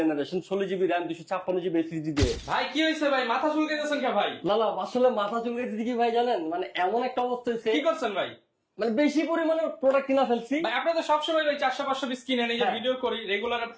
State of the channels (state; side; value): identical; both; correlation 1.00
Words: 16GB RAM 256GB SSD দিয়ে। ভাই কি হইছে ভাই, মাথা চুলকাইতেছেন কে ভাই? না আসলে মাথা চুলকাইতেছে কি ভাই জানেন, মানে এমন একটা অবস্থা হয়েছে, কি করছেন ভাই? মানে বেশি পরিমাণে প্রোডাক্ট কিনা ফেলছি ভাই। আপনারা তো সবসময় ভাই 400-500 পিস কিনেন, এই যে ভিডিও করি রেগুলার,